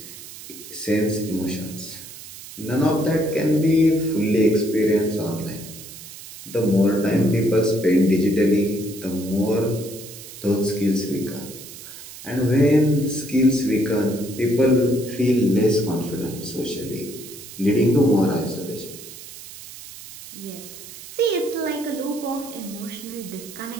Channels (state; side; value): noise; right; hiss, 15 dB below the sound